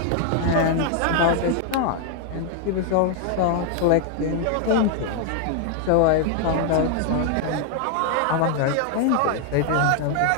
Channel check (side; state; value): both; different; correlation 0.00